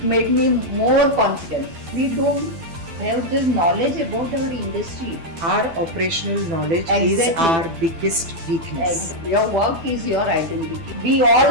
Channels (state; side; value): late; left; 12 ms